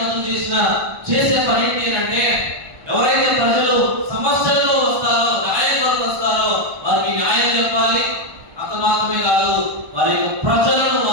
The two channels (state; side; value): late; left; 1.2 ms